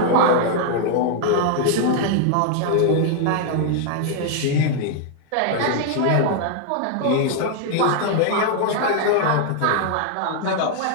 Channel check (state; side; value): different; both; correlation 0.00